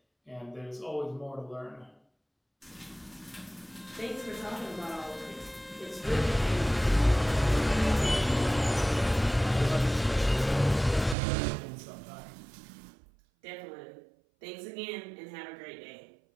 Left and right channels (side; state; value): left; drops out; at 11.2 s